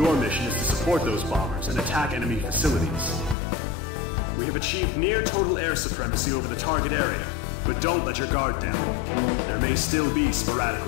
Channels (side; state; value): right; drops out; at 3.4 s